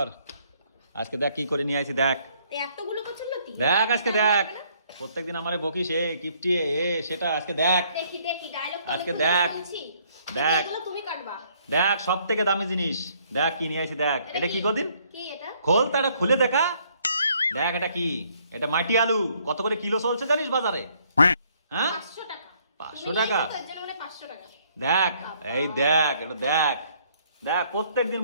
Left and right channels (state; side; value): inverted; both; correlation -0.66